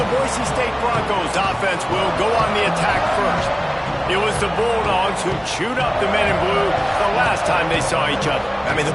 Boise State Broncos offense will go on the attack first. It was the Bulldogs who chewed up the men in blue the last time they saw each other. I mean, the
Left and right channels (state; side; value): identical; both; correlation 1.00